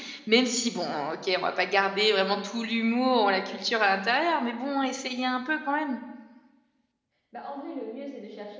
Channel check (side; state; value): both; identical; correlation 1.00